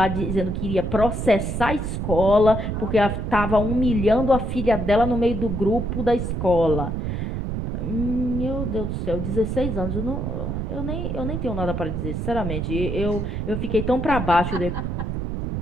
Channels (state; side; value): noise; right; rumble, 2 dB below the sound